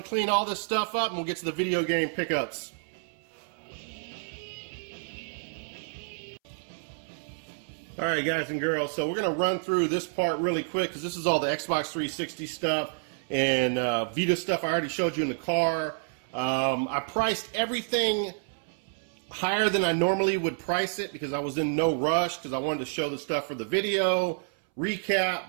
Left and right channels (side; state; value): left; silent; 59 dB below the other